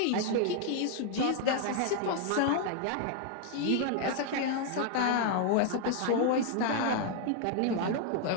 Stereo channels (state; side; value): different; both; correlation 0.00